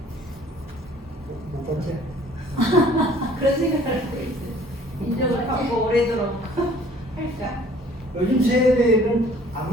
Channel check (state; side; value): normal; both; correlation 0.54